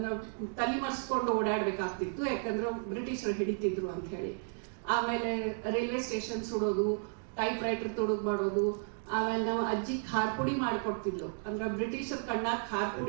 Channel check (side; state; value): left; silent; 55 dB below the other